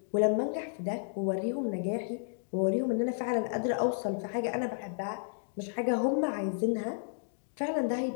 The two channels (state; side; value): silent; right; digital silence